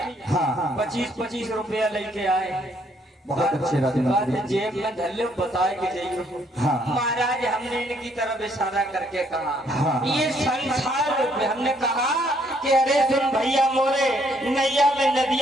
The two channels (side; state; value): both; normal; correlation 0.68